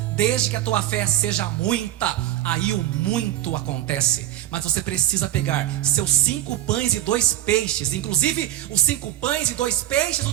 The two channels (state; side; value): quieter; left; 13.4 dB